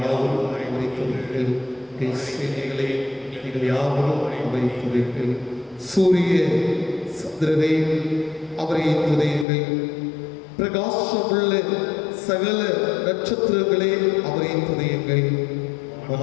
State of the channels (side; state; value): right; drops out; at 9.5 s